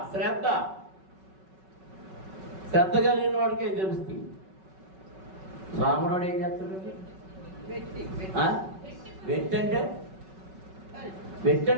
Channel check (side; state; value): left; late; 5.3 ms